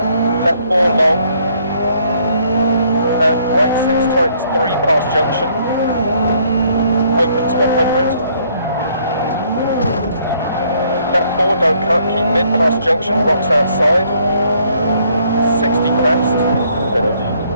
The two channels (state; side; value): inverted; both; correlation -0.66